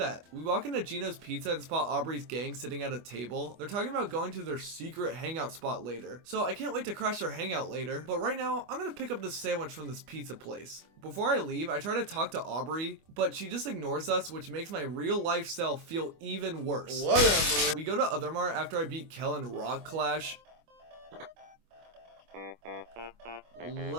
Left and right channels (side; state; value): left; late; 25 ms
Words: We walk into Gino's Pizza and spot Aubrey's gang sitting at a table. They're talking about going to their secret hangout spot later. So I can't wait to crash their hangout later. But right now, I'm gonna pick up this sandwich from this pizza place. Before I leave, I try to talk to Aubrey, but she just ignores us, which makes my real life self feel even worse. Whatever. We go to other mart after I beat Kel in Rock Clash.